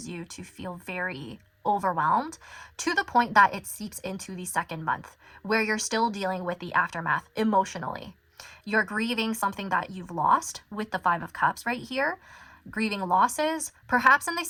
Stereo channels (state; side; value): identical; both; correlation 1.00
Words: you to feel very overwhelmed to the point that it seeps into the second month, where you're still dealing with the aftermath emotionally. You're grieving something that you've lost with the 5 of Cups right here, grieving losses. Perhaps in the